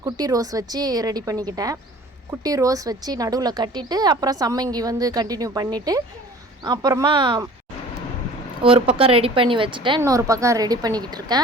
குட்டி ரோஸ் வச்சு ரெடி பண்ணிக்கிட்டேன். குட்டி ரோஸ் வச்சு நடுவில் கட்டிட்டு அப்புறம் சம்மங்கி கண்டினியூ பண்ணிவிட்டு அப்புறமா ஒரு பக்கம் ரெடி பண்ணி வச்சுட்டேன். இன்னொரு பக்கம் ரெடி பண்ணிக்கிட்டு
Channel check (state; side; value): normal; both; correlation 0.46